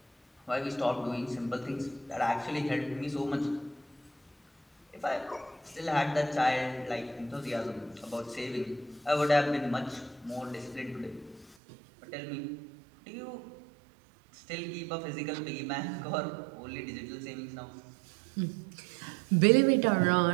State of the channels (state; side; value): drops out; left; at 11.6 s